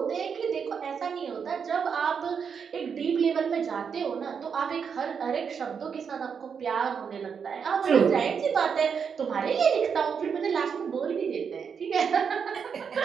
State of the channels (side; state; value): left; quieter; 6.6 dB